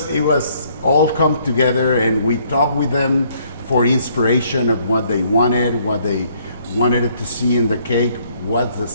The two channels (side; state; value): both; inverted; correlation -0.66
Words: all come together, and we talked with them for inspiration of what they wanted to see in the cake, what the